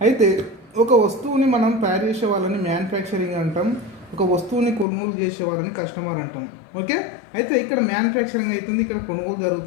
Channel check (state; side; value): drops out; right; at 4.9 s